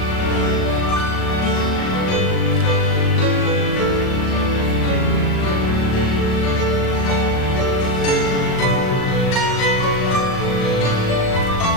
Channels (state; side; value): late; right; 38 ms